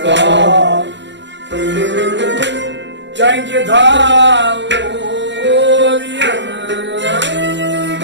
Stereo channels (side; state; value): left; late; 0.52 ms